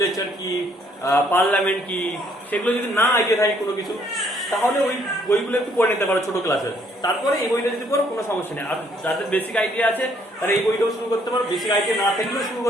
কি, পার্লামেন্ট কি, সেগুলো যদি না আইডিয়া থাকে কোনো কিছু, তাহলে ওই বইগুলো একটু পড়ে নিতে পারো ছোট ক্লাসে। তারপরে এই বইটা যদি পড়ো কোনো সমস্যা নেই। আর যাদের বেসিক আইডিয়া আছে তারা এই বইটাও শুরু করতে পারো, বেসিক আইডিয়া না থাকলেও শুরু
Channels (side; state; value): both; normal; correlation 0.66